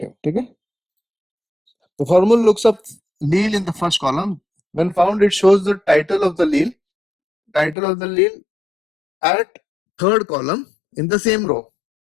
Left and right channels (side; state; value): right; drops out; at 7.8 s